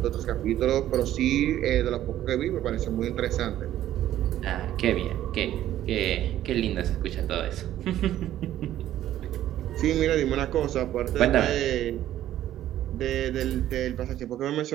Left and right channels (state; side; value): quieter; left; 12.7 dB